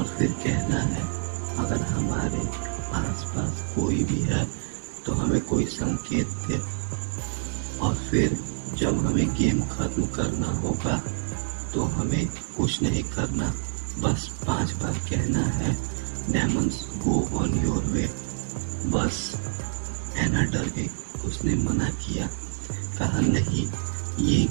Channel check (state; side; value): silent; left; digital silence